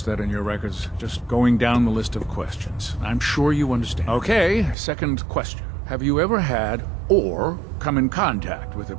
that in your records. Just going down the list of questions. I'm sure you understand. Okay, second question. Have you ever had or come in contact with a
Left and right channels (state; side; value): drops out; left; at 4.8 s